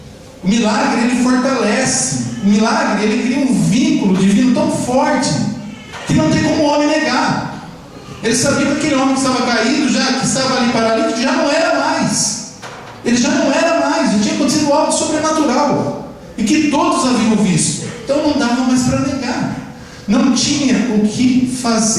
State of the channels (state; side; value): identical; both; correlation 1.00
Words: o milagre, ele fortalece, o milagre, ele cria um vínculo divino tão forte que não tem como o homem negar. Ele sabia que aquele homem que estava caído, que estava ali paralítico, já não era mais. Ele já não era mais, já tinha acontecido algo sobrenatural, e que todos haviam visto. Então não dava mais para negar, não tinha o que